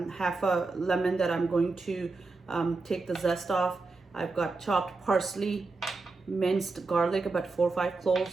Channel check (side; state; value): left; quieter; 3.7 dB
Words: a lemon that I'm going to take the zest off. I've got chopped parsley, minced garlic, about 4 or 5